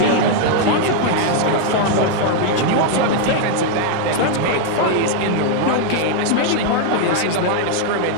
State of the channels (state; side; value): different; both; correlation 0.00